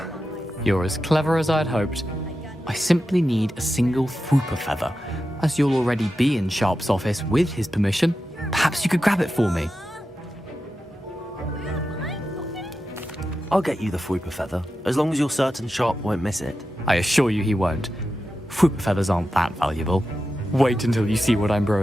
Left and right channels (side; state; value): both; normal; correlation 0.91